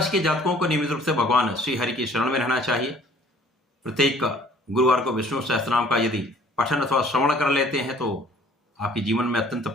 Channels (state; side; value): normal; both; correlation 0.55